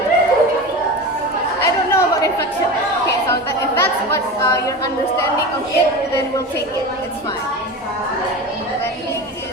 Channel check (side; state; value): both; normal; correlation 0.28